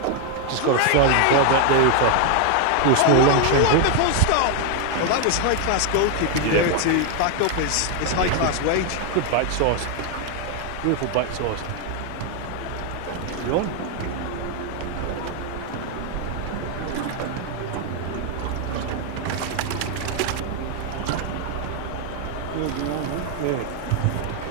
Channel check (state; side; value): different; both; correlation 0.00